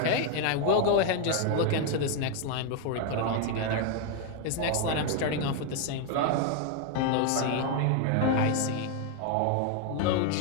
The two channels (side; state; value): both; different; correlation 0.01